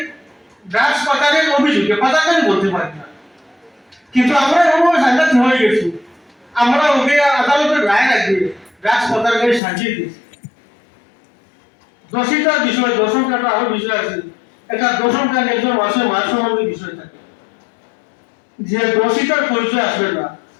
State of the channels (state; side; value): drops out; right; at 9.6 s